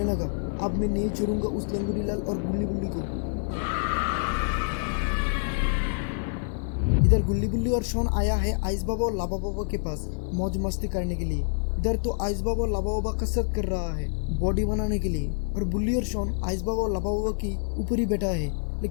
लगा, अब मैं नहीं छोड़ूंगा उस लंगोटीलाल और गुल्ली बुल्ली को। इधर गुल्ली बुल्ली और शॉन आया है आइस बाबा और लाबा बाबा के पास मौज मस्ती करने के लिए। इधर तो आइस बाबा और लाबा बाबा कसरत कर रहा है बॉडी बनाने के लिए और बुल्ली और शॉन आइस बाबा और लाबा बाबा की ऊपर ही बैठा है।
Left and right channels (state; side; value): silent; right; digital silence